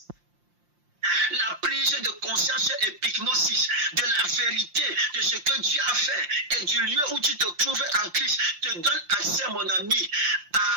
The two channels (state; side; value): late; left; 5.7 ms